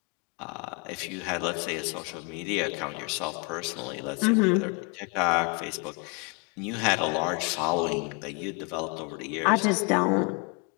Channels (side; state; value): right; quieter; 32.9 dB